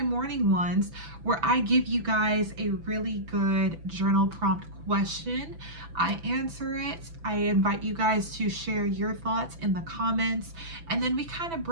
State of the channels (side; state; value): left; late; 6.0 ms